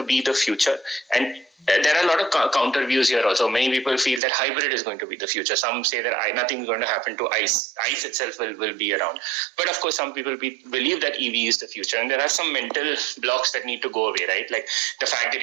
be the future? And there are a lot of counter views here also. Many people feel that hybrid is going to be the future. Some say that nothing is going to happen to ICE. ICE itself will be around. But of course, some people believe that EV is the future. And there are some mental blocks that need to go away, right? Like the fact that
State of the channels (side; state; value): left; drops out; at 4.2 s